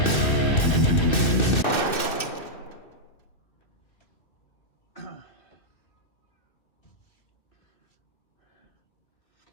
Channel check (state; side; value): late; right; 2.6 ms